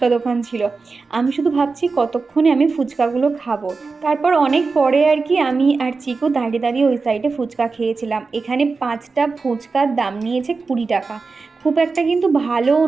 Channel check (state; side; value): quieter; left; 4.3 dB